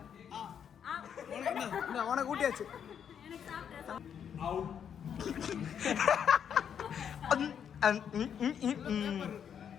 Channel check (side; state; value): right; quieter; 8.2 dB